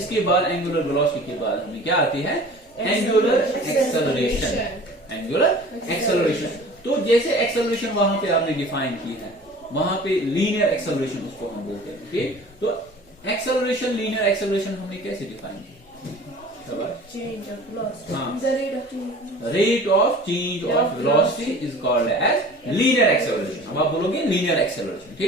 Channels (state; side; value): normal; both; correlation 0.44